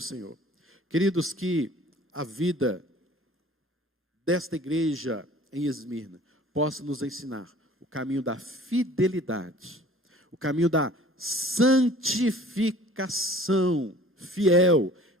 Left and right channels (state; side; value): normal; both; correlation 0.48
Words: Queridos, que a vida desta igreja em Esmirna possa nos ensinar o caminho da fidelidade, o caminho da santificação fiel.